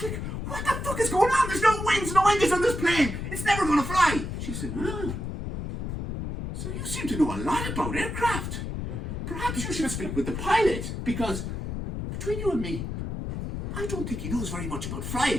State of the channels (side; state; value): left; noise; rumble, 5 dB below the sound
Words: like, what the fuck is going on? There's no wings, no engines on this plane. It's never going to fly. She said, so you seem to know a lot about aircraft. Perhaps you should speak with the pilot, because between you and me, I don't think he knows very much about